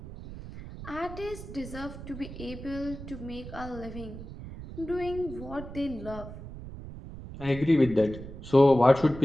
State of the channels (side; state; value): right; noise; rumble, 12 dB below the sound